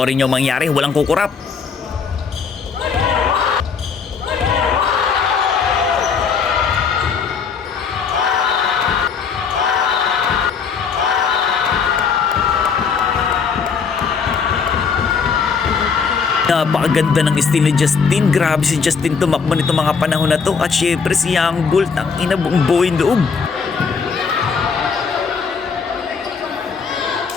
nyo mangyari, walang kukurap. Napakaganda ng style ni Justin. Grabe si Justin tumakbo nito mga panahon na to. At syempre si Young Bull, ang ina buong buhay loob.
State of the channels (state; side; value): quieter; right; 5.7 dB